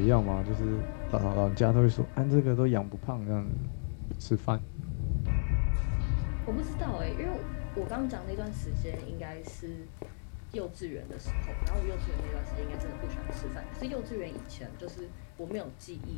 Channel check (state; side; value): silent; right; digital silence